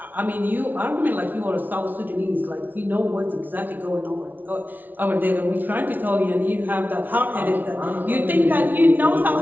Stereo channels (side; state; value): left; late; 0.084 ms